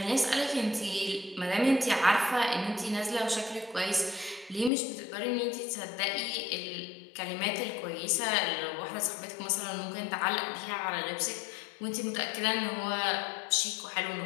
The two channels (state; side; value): drops out; right; at 4.7 s